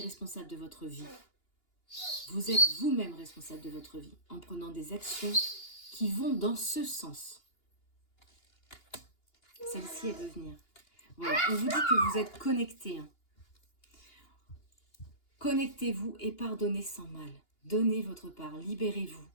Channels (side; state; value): right; late; 2.8 ms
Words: de votre vie. Vous êtes vous-même responsable de votre vie en prenant des actions qui vont dans ce sens. Celle-ci, elle veut venir. Voilà, on vous dit que vous êtes connectés. Hein. Connectez-vous et pardonnez sans mal. Donnez votre part, libérez-vous